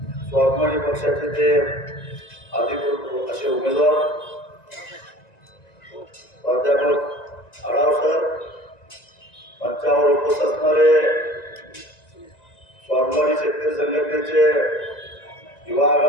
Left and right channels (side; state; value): right; late; 1.9 ms